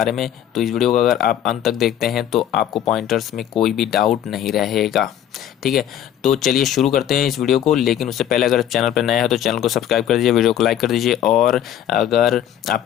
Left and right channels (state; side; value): quieter; right; 10.6 dB